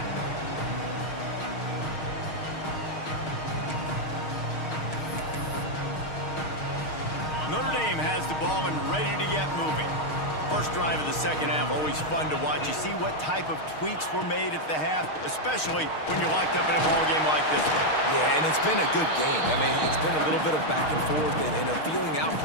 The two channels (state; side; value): late; right; 6.4 ms